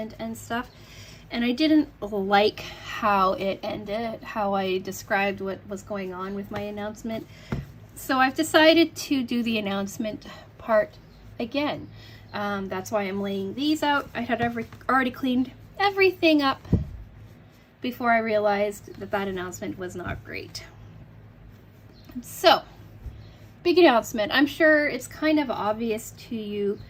and stuff, and I didn't like how it ended, how I described what was going on with my announcement. So I've decided to do the announcement part again. That's why I'm laying these out. I had already cleaned everything up before I realized that that announcement was not great. So, big announcement. I'm sure it's kind of obvious to you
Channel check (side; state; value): both; identical; correlation 1.00